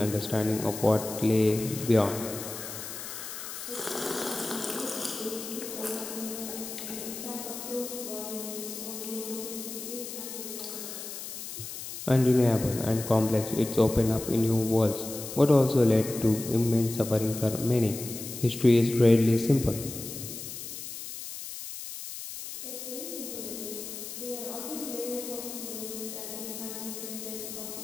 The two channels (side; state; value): left; noise; hiss, 9 dB below the sound